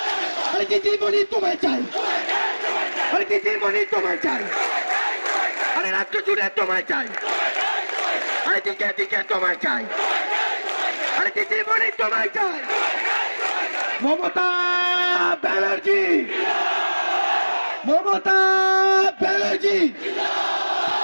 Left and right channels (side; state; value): both; inverted; correlation -1.00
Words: আরে দিদিমণি তোমায় চাই, আরে দিদিমণি তোমায় চাই, আরে রাজ্য জুড়ে তোমায় চাই, আরে দিকে দিকে তোমায় চাই, আরে দিদিমণি তোমায় চাই। মমতা ব্যানার্জি, মমতা ব্যানার্জি,